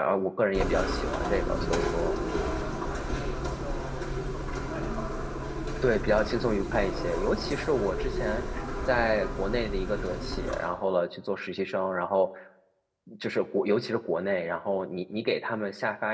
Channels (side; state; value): both; identical; correlation 1.00